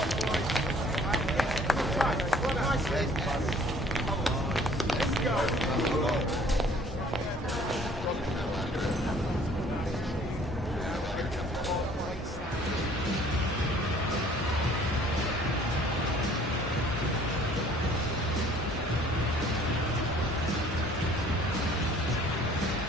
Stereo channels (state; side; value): normal; both; correlation 0.55